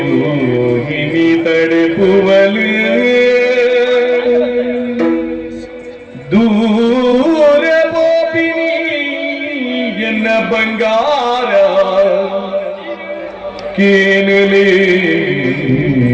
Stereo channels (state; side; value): identical; both; correlation 1.00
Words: ತಡೆಪುವಲು ದೂರ ಬೋಪಿನಿ ಎನ್ನ ಬಂಗಾರ ಕೇನಲೆ